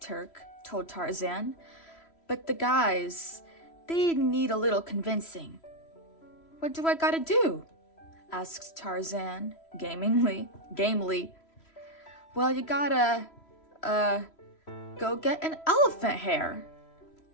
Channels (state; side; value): late; right; 3.0 ms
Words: told Tarzan, "but the guys, they need a little convincing." "What do I gotta do?" asked Tarzan, gamely. "Well, you gotta, go get an elephant hair,"